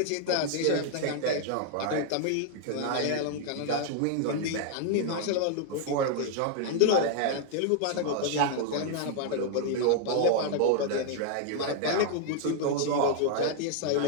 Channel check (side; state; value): both; different; correlation 0.00